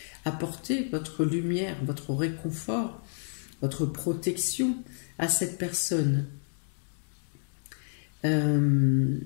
apporter votre lumière, votre réconfort, votre protection à cette personne.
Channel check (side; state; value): right; silent; 58 dB below the other